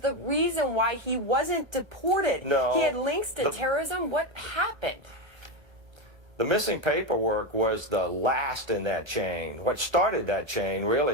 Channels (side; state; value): left; late; 1.2 ms